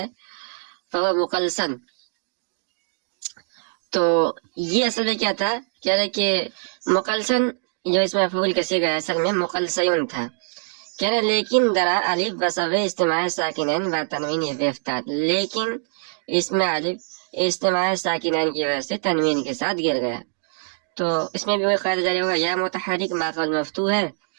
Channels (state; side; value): silent; left; digital silence